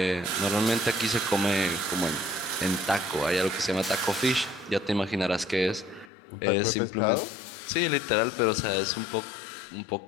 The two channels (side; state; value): right; drops out; at 6.1 s